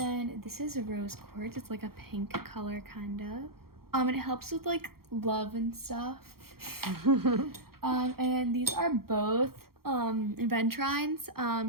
this is a rose quartz. It's like a pink color kind of. And it helps with like love and stuff. And then these are both ventrines.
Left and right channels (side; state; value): left; late; 0.94 ms